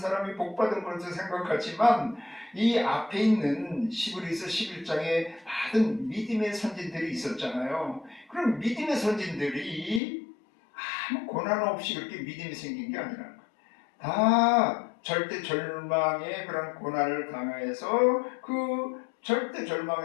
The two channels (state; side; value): drops out; right; at 10.0 s